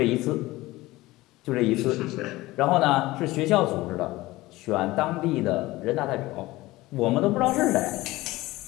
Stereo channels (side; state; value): right; quieter; 18.9 dB